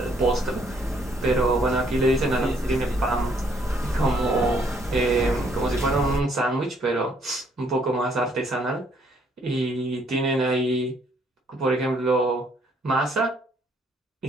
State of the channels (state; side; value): normal; both; correlation 0.67